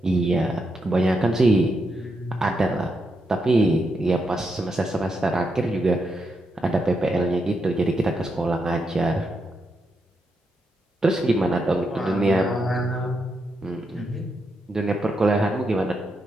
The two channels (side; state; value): both; normal; correlation 0.83